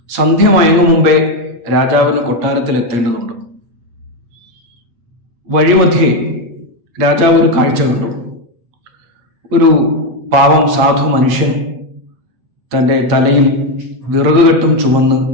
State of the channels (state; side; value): late; left; 8.5 ms